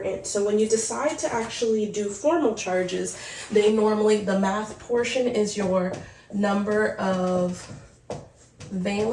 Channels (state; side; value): identical; both; correlation 1.00